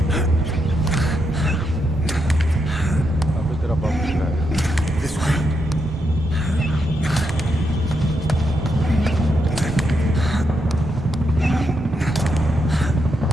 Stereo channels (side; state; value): both; normal; correlation 0.81